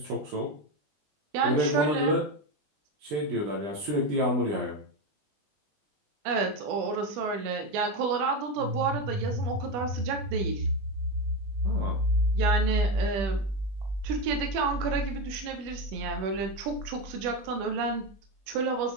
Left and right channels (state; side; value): late; left; 20 ms